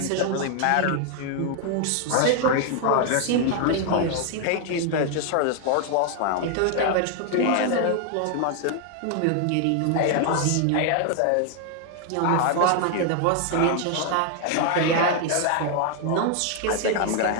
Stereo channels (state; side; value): different; both; correlation 0.00